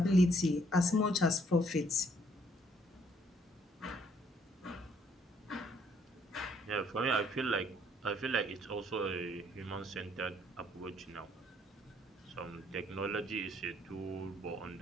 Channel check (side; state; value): both; normal; correlation 0.66